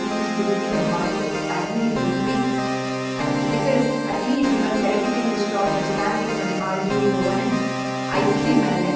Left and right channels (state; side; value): identical; both; correlation 1.00